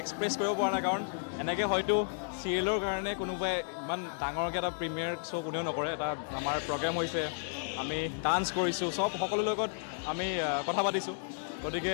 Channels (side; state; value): right; silent; digital silence